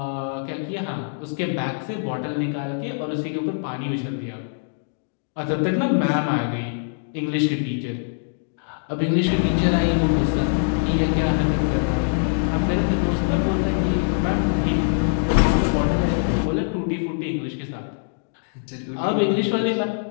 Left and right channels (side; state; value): right; silent; digital silence